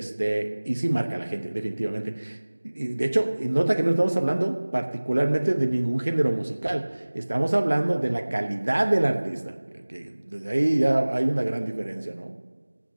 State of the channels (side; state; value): both; inverted; correlation -1.00